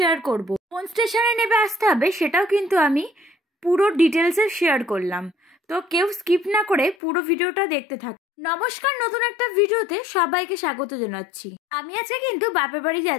করব। কোন স্টেশনে নেমে আসতে হবে সেটাও কিন্তু আমি পুরো ডিটেলসে শেয়ার করলাম, তো কেউ স্কিপ না করে পুরো ভিডিওটা দেখতে থাক। নমস্কার, নতুন একটা ভিডিওতে সবাইকে স্বাগত জানাচ্ছি। আমি আজকে কিন্তু বাপের বাড়ি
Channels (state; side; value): drops out; right; at 7.0 s